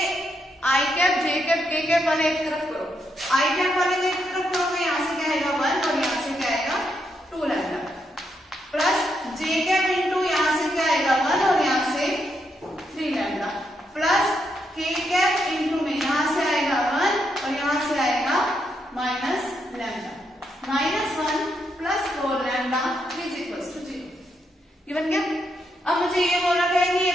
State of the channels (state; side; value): normal; both; correlation 0.80